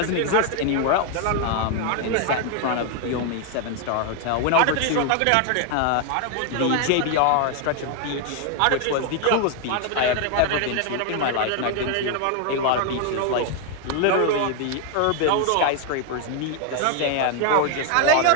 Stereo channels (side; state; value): both; different; correlation 0.01